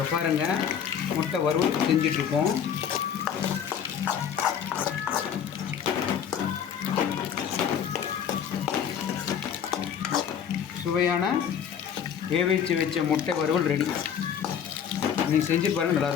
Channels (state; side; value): quieter; right; 8.3 dB